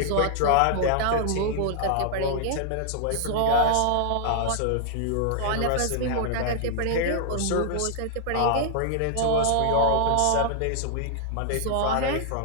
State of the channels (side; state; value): both; different; correlation 0.00